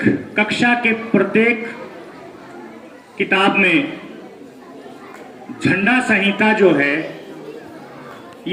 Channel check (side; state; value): both; identical; correlation 1.00